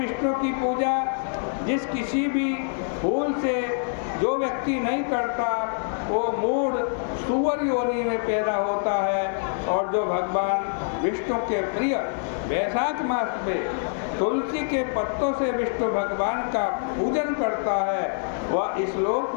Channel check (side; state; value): right; silent; digital silence